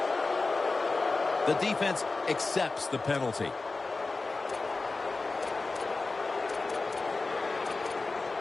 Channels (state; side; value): quieter; right; 3.7 dB